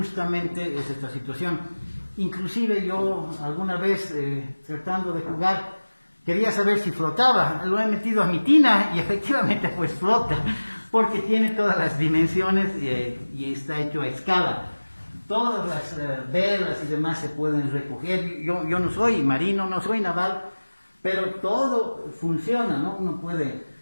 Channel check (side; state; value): both; inverted; correlation -1.00